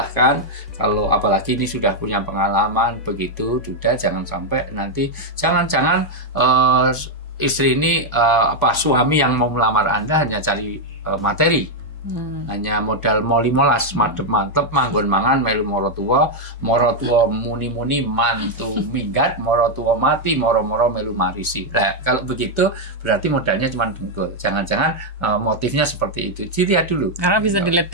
Kalau apalagi ini sudah punya pengalaman begitu, sudah jangan sampai nanti jangan-jangan istri ini suami yang mau melamar Anda hanya cari materi. Hanya modal moli molas mantep manggon mangan melu moro tua muni mantu minggat moro tua mati moro melu marisi. Nah, kalau begitu berarti modalnya cuma dengkul. Jangan-jangan motifnya seperti itu. Dilihat dulu. Karena bisa dilihat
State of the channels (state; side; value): normal; both; correlation 0.00